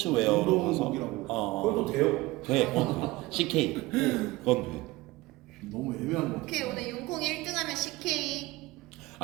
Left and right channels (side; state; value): left; quieter; 20.2 dB